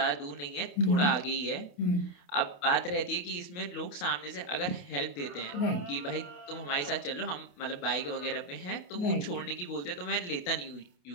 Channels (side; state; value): right; late; 28 ms